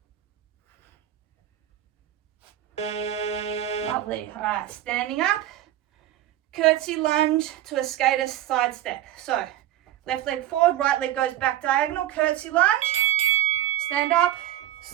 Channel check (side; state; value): left; quieter; 13.1 dB